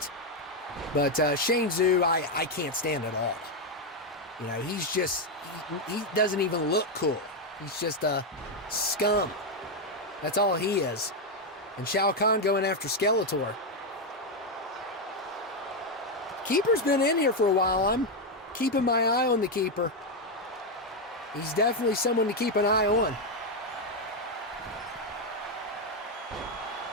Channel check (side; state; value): both; normal; correlation 0.04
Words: But Shang Tzu, I can't stand at all. You know, he's just, he doesn't even look cool. He's just a scum. That's all he is. And Shao Kahn going after Skeletor. Keeper's been in here for a while. I'm keeping my eye on the Keeper. He's definitely someone to keep an eye on.